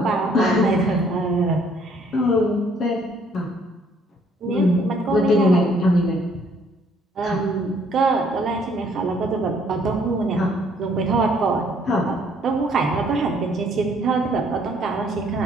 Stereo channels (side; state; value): both; normal; correlation 0.63